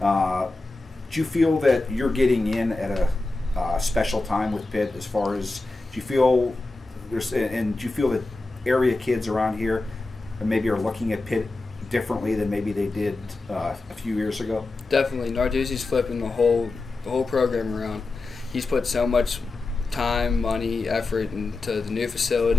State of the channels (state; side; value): quieter; right; 3.3 dB